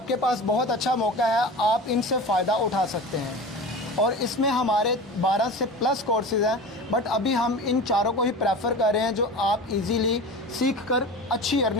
पास बहुत अच्छा मौका है, आप इनसे फ़ायदा उठा सकते हैं। और इसमें हमारे 12 से प्लस कोर्सेज हैं, बट अभी हम इन चारों को ही प्रेफर कर रहे हैं जो आप इजीली सीख कर अच्छी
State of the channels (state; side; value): normal; both; correlation 0.33